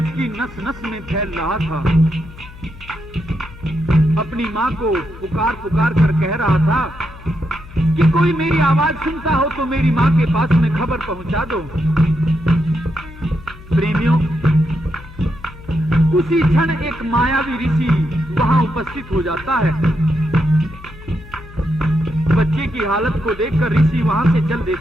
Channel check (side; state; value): left; noise; hum, 18 dB below the sound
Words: नस नस में फैल रहा था। अपनी माँ को पुकार पुकार कर कह रहा था कि कोई मेरी आवाज सुनता हो तो मेरी माँ के पास में खबर पहुंचा दो। प्रेमियों, उसी क्षण एक मायावी ऋषि वहां उपस्थित हो जाता है। बच्चे की हालत को देखकर ऋषि वहां से चल